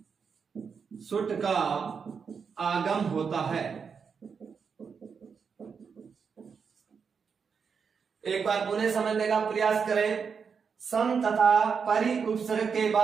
सुट का आगम होता है। एक बार पुनः समझने का प्रयास करें। सम तथा परि उपसर्ग के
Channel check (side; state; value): left; quieter; 6.1 dB